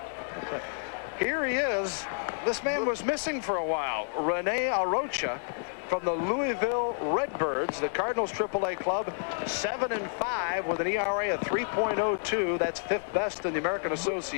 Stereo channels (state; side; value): silent; right; digital silence